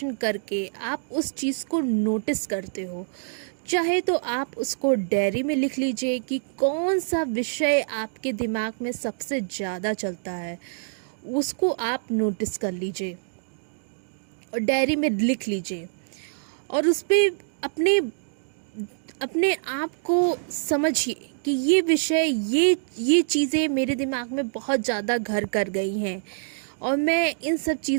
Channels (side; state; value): left; silent; digital silence